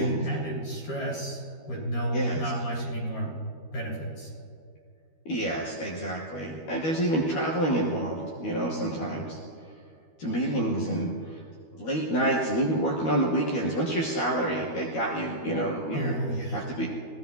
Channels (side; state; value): right; late; 13 ms